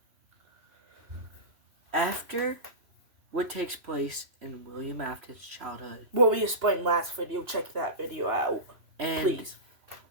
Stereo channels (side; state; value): left; late; 3.0 ms